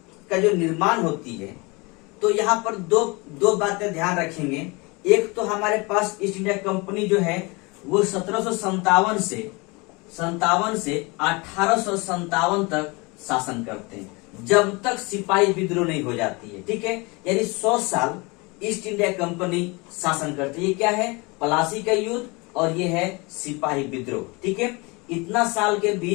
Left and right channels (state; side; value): quieter; right; 26.8 dB